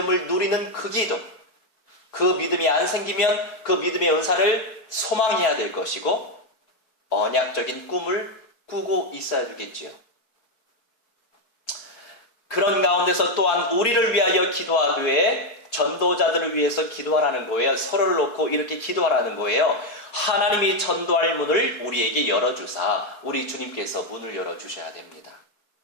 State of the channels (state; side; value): late; right; 4.6 ms